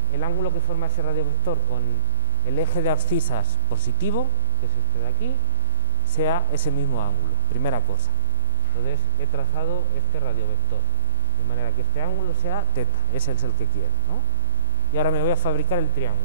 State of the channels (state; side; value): inverted; both; correlation -0.53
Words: el ángulo que forma ese radiovector con el eje de abscisas positivo, que es este de aquí, sea ese mismo ángulo, primera cosa. Entonces he trazado este radiovector de manera que este ángulo sea teta, ese es el que quiero, ¿no? Y ahora me voy a fabricar el